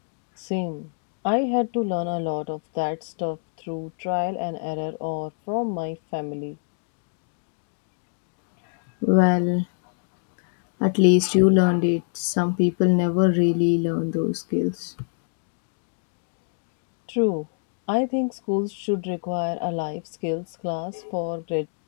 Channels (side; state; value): right; silent; digital silence